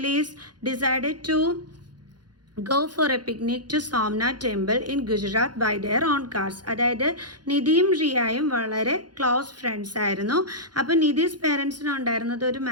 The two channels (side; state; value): left; late; 0.70 ms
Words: decided to go for a picnic to Somnath temple in Gujarat by their own cars. അതായത് നിധിയും റിയയും വളരെ close friends ആയിരുന്നു. അപ്പോൾ നിധീസ് പേരൻസിന് ഉണ്ടായിരുന്നത് ഒരു